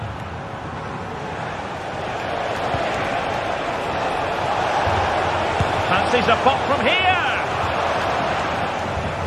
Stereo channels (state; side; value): identical; both; correlation 1.00